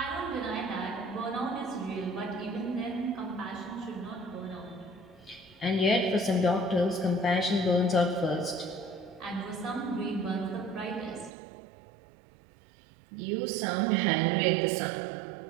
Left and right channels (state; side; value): drops out; left; at 11.3 s